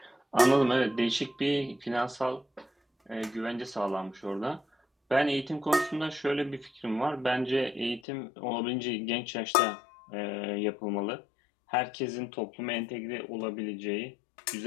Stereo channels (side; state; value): right; drops out; at 8.0 s